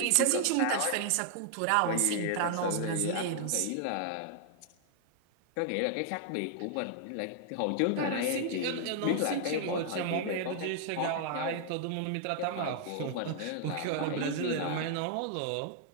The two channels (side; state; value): both; different; correlation 0.00